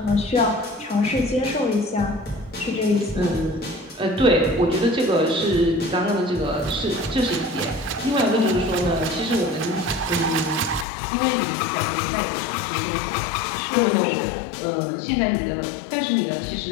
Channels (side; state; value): right; drops out; at 10.9 s